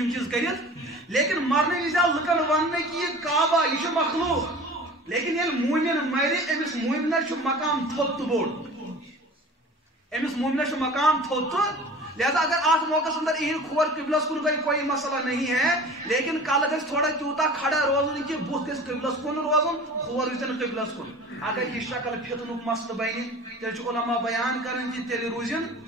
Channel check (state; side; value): normal; both; correlation 0.40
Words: چیٖز کٔرِتھ لیکن مرنہٕ وِزِ آو لُکن وننہٕ کہِ یہِ کعبہ یہِ چھُ مخلوق لیکن ییٚلہِ موٗمِن مرِ أمِس موٗمِنس چھُ مقام تھوٚد تہٕ بوٚڑ أمِس موٗمِنس چھُ مقام تھوٚد تہٕ لہذا اگر آٹھ موقع اندر یہند کھور قبلس کن گئی کوئی مسئلہ نہیں ہے لیکن کل گھس تھوڑا تیوتا کھڑا روزن کہ بت گھس قبلس کن روزن کھور گھن قبلس کن اگر یہ شکل فتنک مسئلہ بنہ تیل علماء بیان کرن کہ تیل روزن